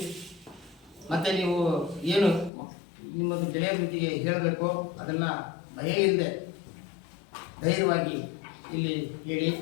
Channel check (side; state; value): right; drops out; at 2.5 s